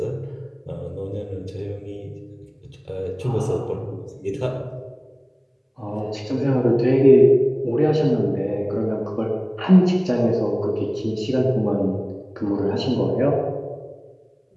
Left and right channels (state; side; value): identical; both; correlation 1.00